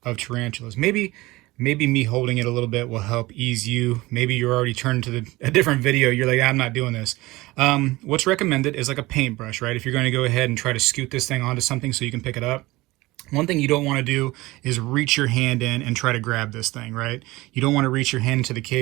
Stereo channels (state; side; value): quieter; left; 20.3 dB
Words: of tarantulas. Maybe me holding it a little bit will help ease you. Maybe you're already turned to a different video. You're like, I'm not doing this. What's recommended is like a paintbrush, right? If you're going to go ahead and try to scoot this thing onto something so you can pick it up. One thing you don't want to do is reach your hand in and try to grab this thing, right? You don't want to reach your hand into the